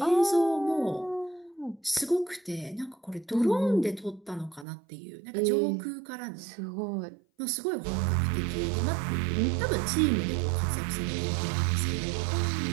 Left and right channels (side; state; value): left; drops out; at 4.7 s